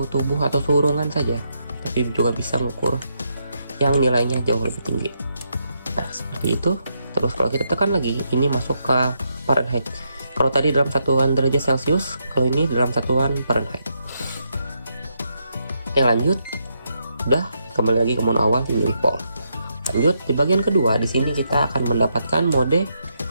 tubuh atau suhu ruangan saja, tapi juga bisa mengukur yang nilainya jauh lebih tinggi. Nah, seperti itu. Terus kalau kita tekan lagi, ini masuk ke Fahrenheit. Kalau tadi dalam satuan derajat Celcius, kalau ini dalam satuan Fahrenheit. Yang lanjut, udah kembali lagi ke mode awal di milivolt. Lanjut, di bagian kedua, di sini kita akan mendapatkan mode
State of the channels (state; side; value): inverted; both; correlation -0.79